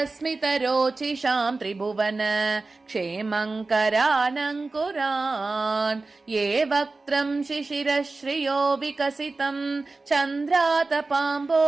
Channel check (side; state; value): left; quieter; 3.6 dB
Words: त्रिभुवन क्षेमङ्करानङ्कुरान् ये वक्त्रं शिशिरश्रियो विकसितं